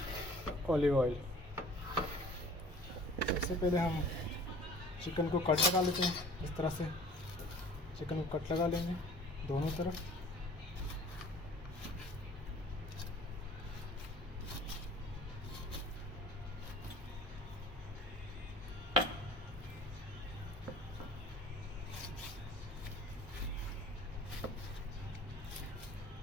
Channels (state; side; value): normal; both; correlation 0.48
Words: ऑलिव ऑयल। सबसे पहले हम चिकन को कट लगा लेते हैं। इस तरह से चिकन को कट लगा लेंगे दोनों तरफ।